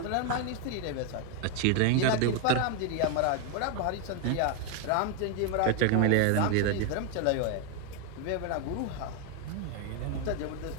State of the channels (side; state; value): both; different; correlation 0.01